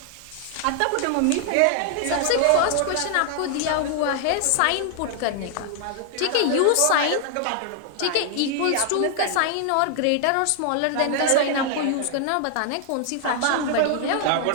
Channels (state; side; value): different; both; correlation 0.00